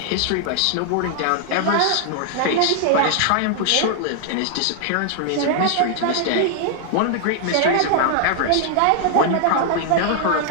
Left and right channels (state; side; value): different; both; correlation 0.00